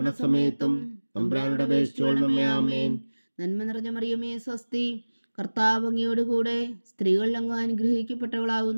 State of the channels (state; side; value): inverted; both; correlation -1.00